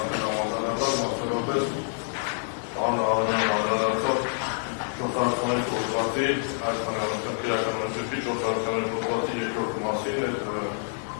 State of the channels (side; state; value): right; silent; 60 dB below the other